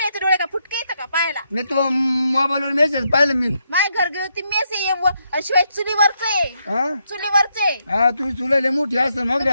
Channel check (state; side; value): inverted; both; correlation -0.79